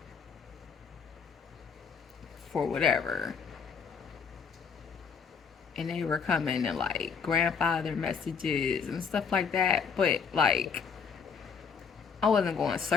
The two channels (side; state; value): right; quieter; 6.1 dB